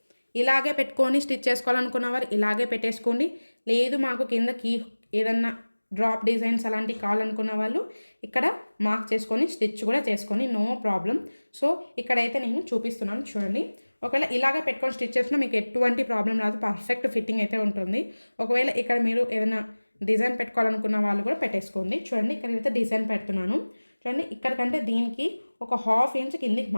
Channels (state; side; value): inverted; both; correlation -1.00